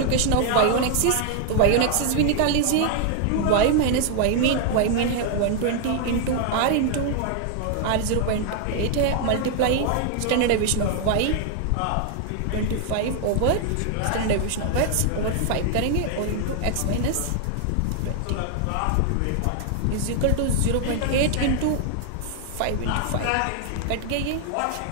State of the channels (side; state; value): both; different; correlation 0.00